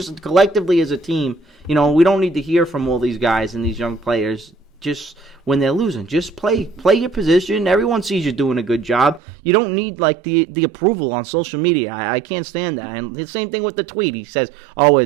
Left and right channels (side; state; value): left; drops out; at 9.2 s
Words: collectively as a team. We don't need to hear from all these guys and these young players just when they're losing. Just play your position. Everyone sees you doing a good job. You don't need like the approval on social media. I can't stand that. And the same thing with the tweet. He says, "Oh,